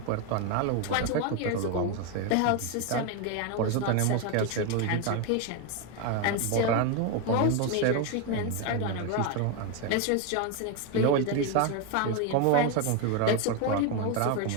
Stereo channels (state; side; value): different; both; correlation 0.02